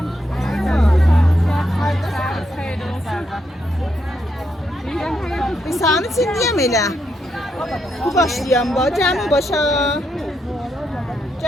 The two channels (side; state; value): both; normal; correlation 0.80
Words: İnsanı çindiyəm elə. Bu başlayam ba, cəm başa.